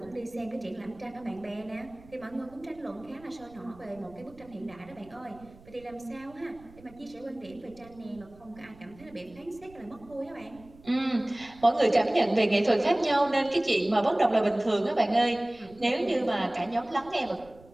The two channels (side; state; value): right; noise; rumble, 23 dB below the sound